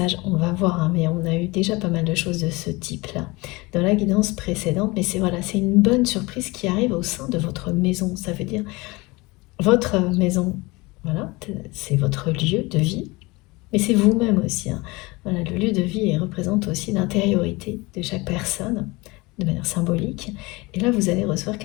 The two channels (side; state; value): right; quieter; 23.7 dB